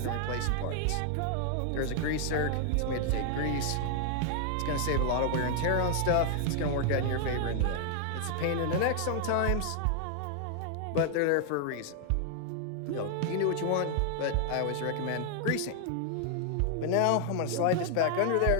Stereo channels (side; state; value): both; different; correlation 0.00